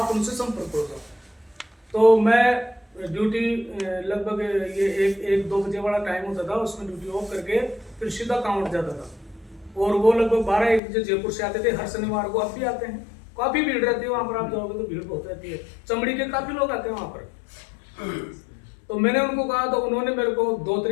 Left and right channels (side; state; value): right; drops out; at 10.8 s